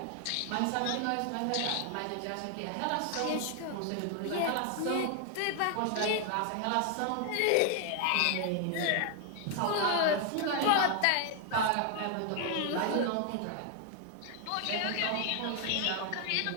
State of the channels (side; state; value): both; different; correlation 0.00